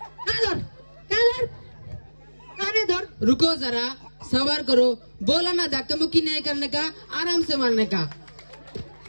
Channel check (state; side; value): inverted; both; correlation -1.00